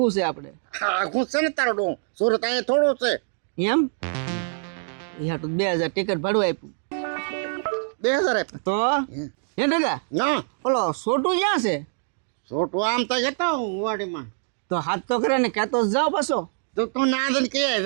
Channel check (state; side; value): silent; left; digital silence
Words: છે આપણે આઘું છે ને તારો ડો સુરત અહીંયા થોડું છે એમ. યા તો 2,000 ટિકિટ ભાડું આપ્યું 2,000 તો હે દાદા ના ઓલો છોટું ક્યાં છે? છોટું આમ તો જતો હું વાડીમાં તો હાથ તો કરે ને કહેતો જ જાઓ પાછો. તો તું ના દે કે